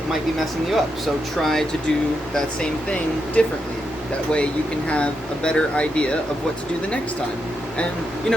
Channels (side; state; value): both; normal; correlation 0.83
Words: might be messing you up. So try to do that same thing differently. That way you can have a better idea of what to do the next time. And you